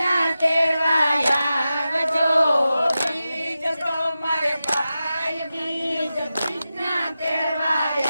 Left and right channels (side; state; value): both; inverted; correlation -0.92